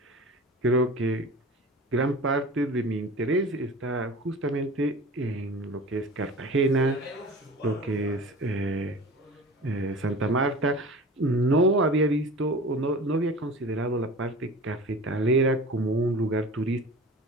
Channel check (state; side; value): normal; both; correlation 0.37